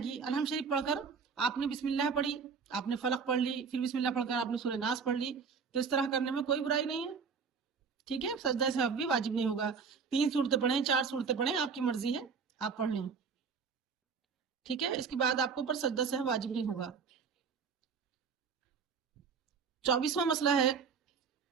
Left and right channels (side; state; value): left; quieter; 5.7 dB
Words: अलहम शरीफ पढ़कर आपने बिस्मिल्लाह पढ़ी, आपने फलक पढ़ ली, फिर बिस्मिल्लाह पढ़कर आपने सूरह नास पढ़ ली, तो इस तरह करने में कोई बुराई नहीं है। ठीक है, सजदा सहव भी वाजिब नहीं होगा। 3 सूरतें पढ़ें, 4 सूरतें पढ़ें, आपकी मर्जी है, आप पढ़ लें। ठीक है, इसके बाद आपको ऊपर सजदा सहव वाजिब नहीं होगा। 24वां मसला है